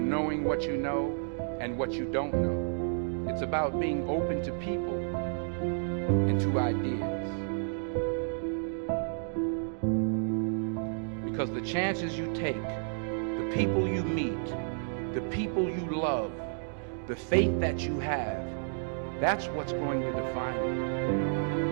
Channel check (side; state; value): left; silent; digital silence